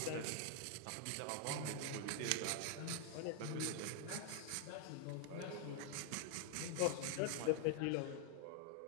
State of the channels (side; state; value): both; different; correlation 0.00